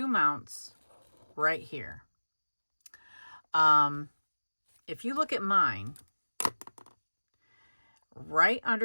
mounts right here. If you look at mine, right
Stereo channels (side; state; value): both; inverted; correlation -1.00